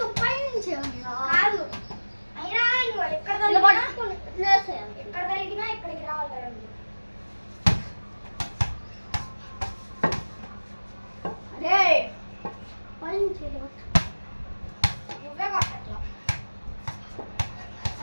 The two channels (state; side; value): inverted; both; correlation -1.00